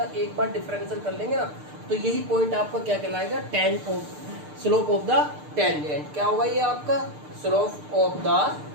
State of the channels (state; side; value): late; left; 6.7 ms